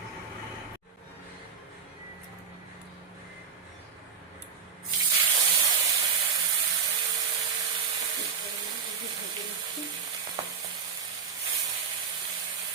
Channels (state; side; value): quieter; left; 6.3 dB